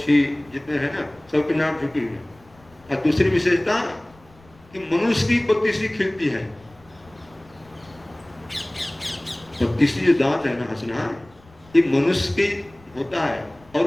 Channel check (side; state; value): left; noise; rumble, 27 dB below the sound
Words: जितने हैं ना, सबके नाम झुकी हुई है। और दूसरी विशेषता कि मनुष्य की 32वीं खिलती है। 32 जो दांत है ना, हंसना, ये मनुष्य की होता है,